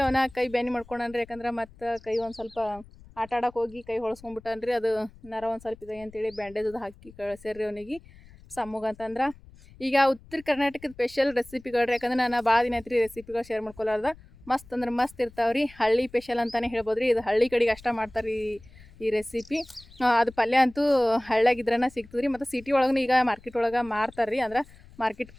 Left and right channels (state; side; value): noise; left; rumble, 22 dB below the sound